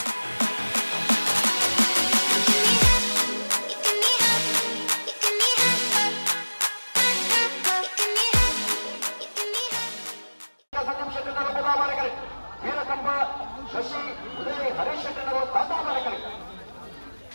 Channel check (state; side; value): inverted; both; correlation -1.00